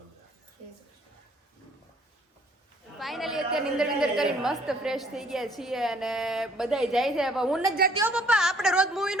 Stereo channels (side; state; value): both; normal; correlation 0.60